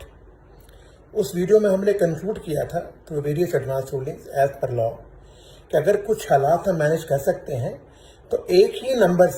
उस वीडियो में हमने कंक्लूड किया था through various advance rulings as per law कि अगर कुछ हालात हम मैनेज कर सकते हैं तो एक ही नंबर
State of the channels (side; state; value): both; identical; correlation 1.00